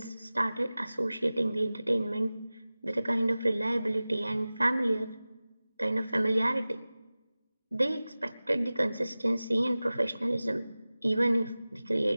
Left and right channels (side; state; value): both; inverted; correlation -0.97